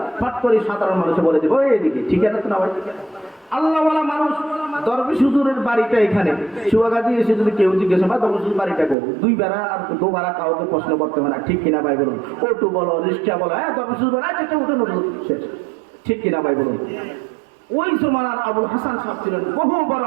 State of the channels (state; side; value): drops out; left; at 9.0 s